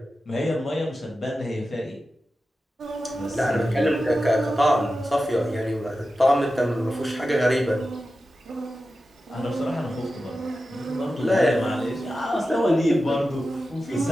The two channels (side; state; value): both; normal; correlation 0.92